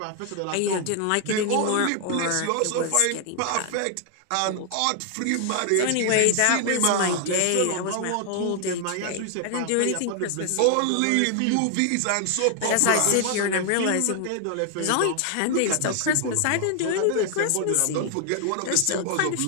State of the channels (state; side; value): different; both; correlation 0.00